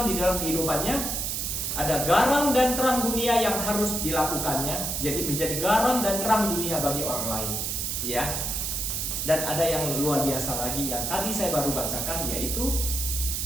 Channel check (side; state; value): right; noise; hiss, 1 dB below the sound